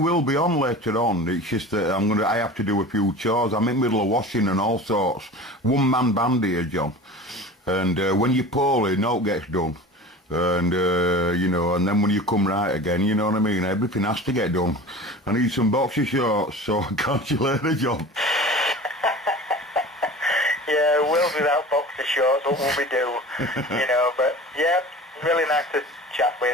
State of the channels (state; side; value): normal; both; correlation 0.37